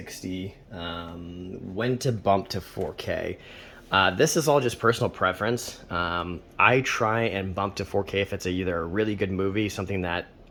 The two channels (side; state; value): both; identical; correlation 1.00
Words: When to bump to 4K? This is all just personal preference. I try and bump to 4K if it's either a really good movie, something that